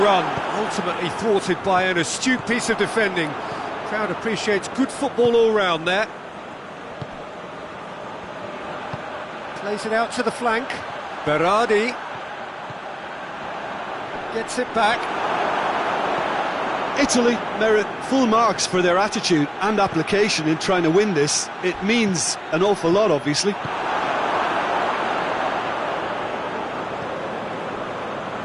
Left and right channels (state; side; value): identical; both; correlation 1.00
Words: run, ultimately thwarted by an astute piece of defending. Crowd appreciates good football all round there. Plays it out to the flank. Berardi gets it back. Italy merit full marks for their attitude and application in trying to win this. It means an awful lot, obviously.